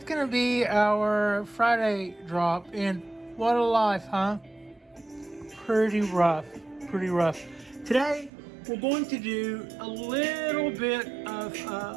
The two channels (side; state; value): left; drops out; at 8.3 s